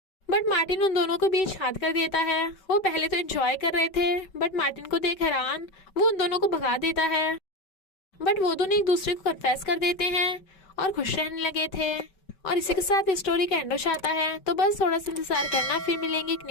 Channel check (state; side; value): late; right; 5.2 ms